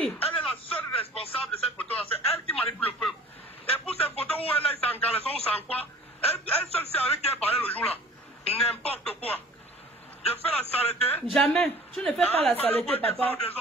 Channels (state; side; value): normal; both; correlation 0.47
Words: Elle est la seule responsable de cette photo-là. C'est elle qui manipule le peuple. Et pour ces photos où elle est sans caleçon ou sans quoi, elle seule sait avec qui elle parlait le jour là. N'importe quoi. Je fais la saleté. Jamais. Tu ne fais pas la saleté, papa.